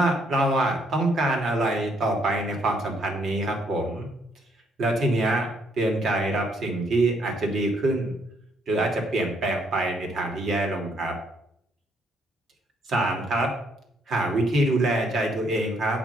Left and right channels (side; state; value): both; normal; correlation 0.70